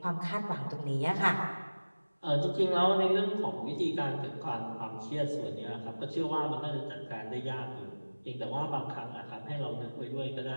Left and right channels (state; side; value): inverted; both; correlation -1.00